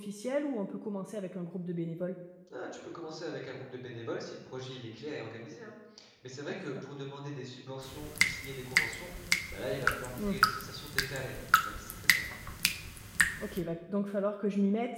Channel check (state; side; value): identical; both; correlation 1.00